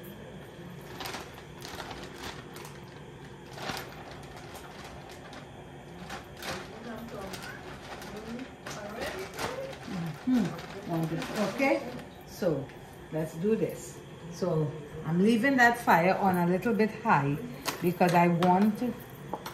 Okay, so let's do this. So I'm leaving that fire on a little bit high because I want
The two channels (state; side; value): identical; both; correlation 1.00